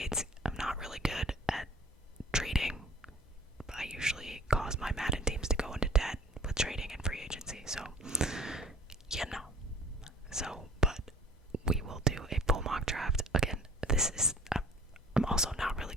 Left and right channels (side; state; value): both; normal; correlation 0.50